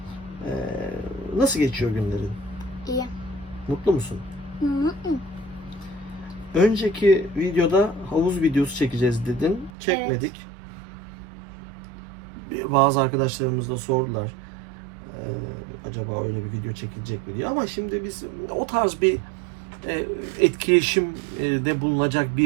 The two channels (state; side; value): drops out; left; at 9.7 s